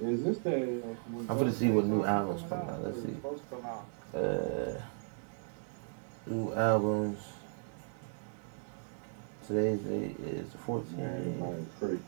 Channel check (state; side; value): silent; left; digital silence